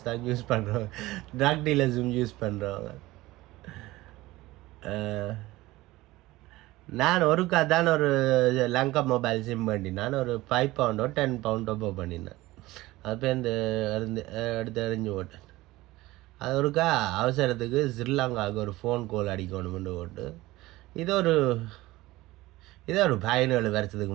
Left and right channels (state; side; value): quieter; left; 18.5 dB